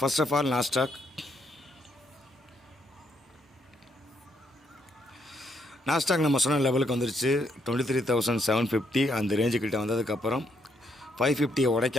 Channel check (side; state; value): both; normal; correlation 0.74